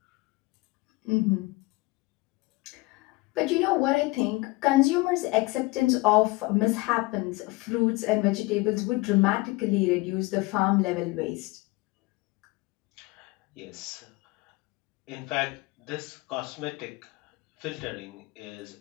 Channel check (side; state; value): right; quieter; 22.7 dB